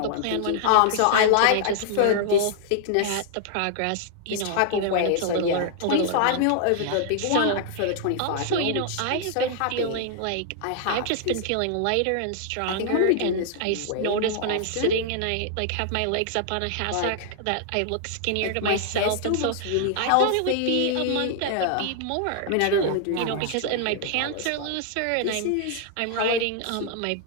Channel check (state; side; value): different; both; correlation 0.00